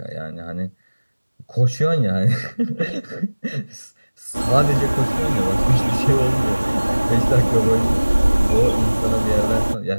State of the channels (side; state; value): both; inverted; correlation -1.00